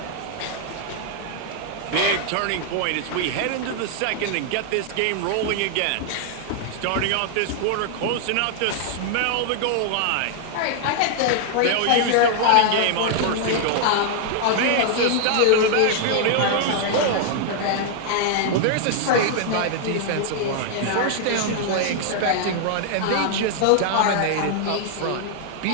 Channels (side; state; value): both; different; correlation 0.00